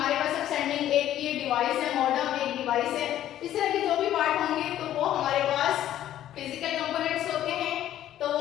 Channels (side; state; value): right; quieter; 12.2 dB